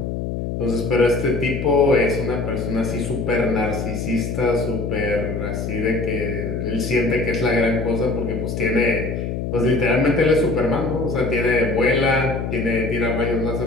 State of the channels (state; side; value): noise; left; hum, 3 dB below the sound